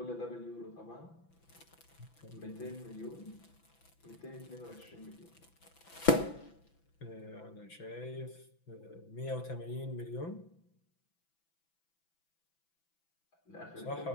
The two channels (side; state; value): right; late; 6.0 ms